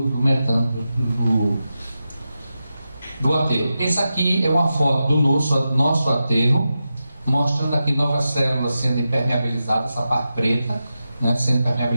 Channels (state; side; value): inverted; both; correlation -0.91